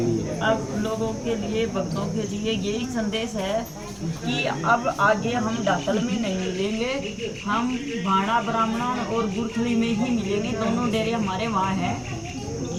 लिए? अब लोगों के लिए, भक्तों के लिए यही संदेश है कि अब आगे हम डाकल में नहीं मिलेंगे, हम भाड़ा ब्राह्मण और गुरथली में ही मिलेंगे। दोनों डेरे हमारे वहाँ हैं,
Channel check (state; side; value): identical; both; correlation 1.00